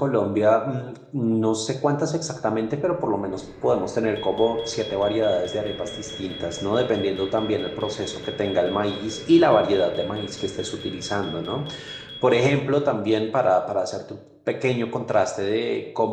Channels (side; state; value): both; identical; correlation 1.00